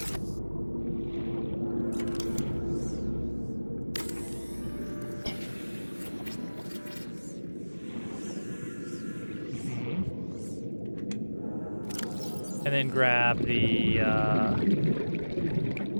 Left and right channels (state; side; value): inverted; both; correlation -1.00